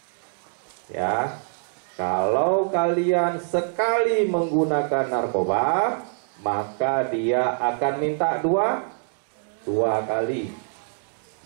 Ya. Kalau kalian sekali menggunakan narkoba, maka dia akan minta 2 kali.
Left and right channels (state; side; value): silent; left; digital silence